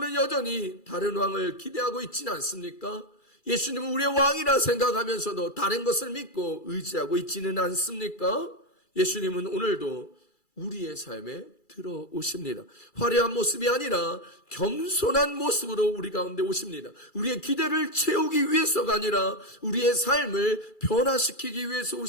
여전히 다른 왕을 기대하고 있지는 않습니까? 예수님은 우리의 왕이라 생각하면서도 다른 것을 믿고 의지하고 있지는 않습니까? 예수님은 오늘도 우리의 삶에 들어오십니다. 화려한 모습이 아니라 겸손한 모습으로 우리 가운데 오십니다. 우리의 기대를 채우기 위해서가 아니라 우리의 삶을 변화시키기 위해서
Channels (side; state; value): right; late; 2.3 ms